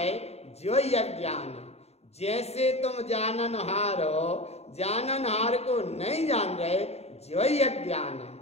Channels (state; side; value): late; right; 0.30 ms